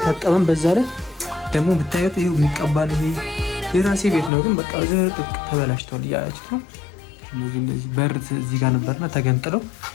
በዛ ላይ ደግሞ ብታዩት ይሄው የሚቀባል። ይሄ የራሴ ቤት ነው ግን በቃ ዝርጥቅ ተበላሽቷል እያላችሁ ነው። እነዚህ በር እዚህ ጋር ነበርና ተገንጥለው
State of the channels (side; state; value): right; drops out; at 4.3 s